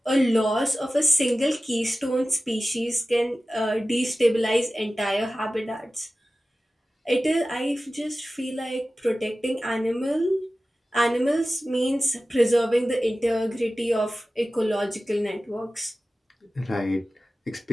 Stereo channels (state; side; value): normal; both; correlation 0.95